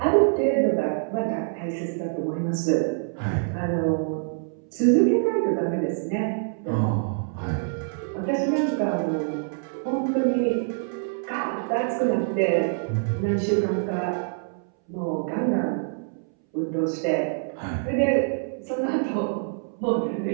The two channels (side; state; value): left; silent; 61 dB below the other